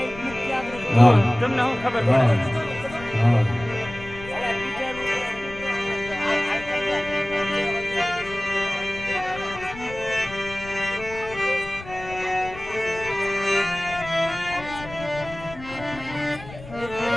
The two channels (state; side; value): noise; left; rumble, 15 dB below the sound